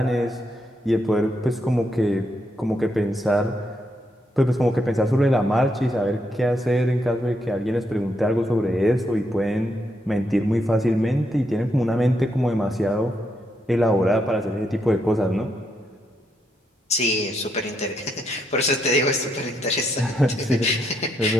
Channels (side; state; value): both; normal; correlation 0.78